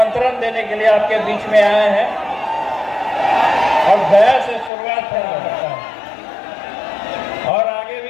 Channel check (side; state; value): right; drops out; at 4.7 s